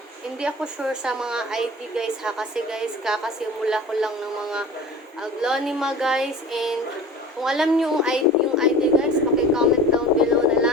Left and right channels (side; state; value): both; normal; correlation 0.37